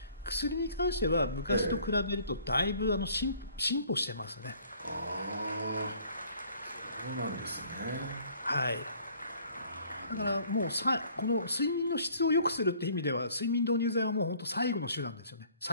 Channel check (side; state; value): both; inverted; correlation -0.57